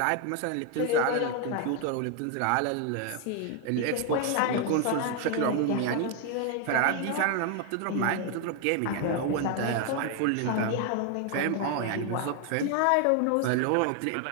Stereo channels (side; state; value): both; different; correlation 0.00